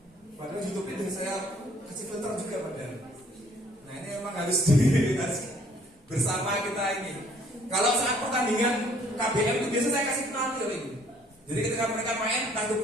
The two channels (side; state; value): both; normal; correlation 0.60